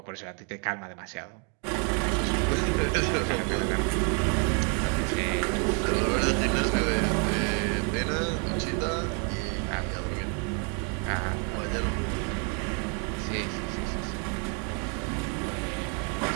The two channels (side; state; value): left; quieter; 37.9 dB